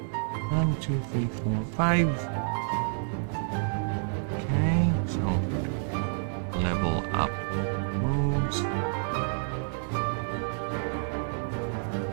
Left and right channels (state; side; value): silent; left; digital silence